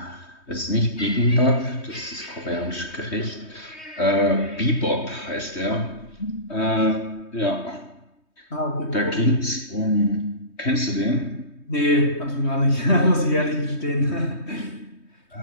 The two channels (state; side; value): late; right; 3.2 ms